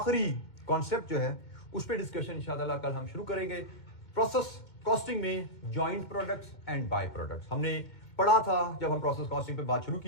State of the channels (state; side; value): late; right; 2.1 ms